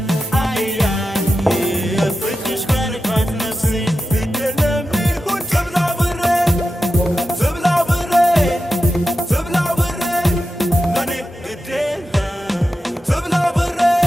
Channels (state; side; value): normal; both; correlation 0.90